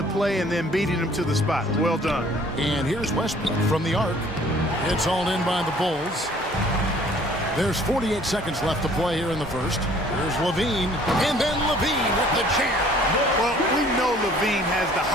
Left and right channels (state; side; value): normal; both; correlation 0.55